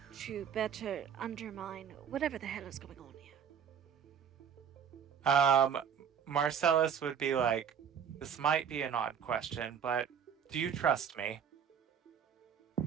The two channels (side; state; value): left; quieter; 7.8 dB